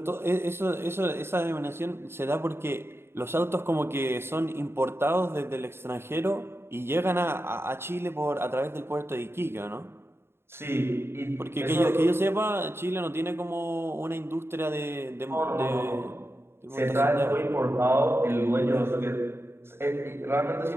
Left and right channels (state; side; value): late; left; 0.12 ms